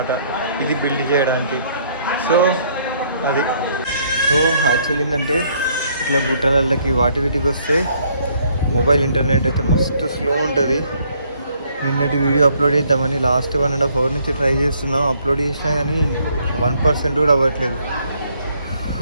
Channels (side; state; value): both; inverted; correlation -0.66